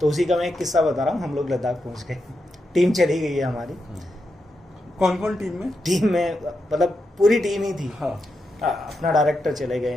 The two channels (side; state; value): both; normal; correlation 0.86